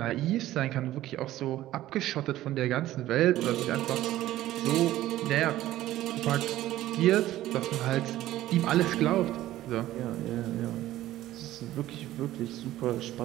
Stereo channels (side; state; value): left; quieter; 14.6 dB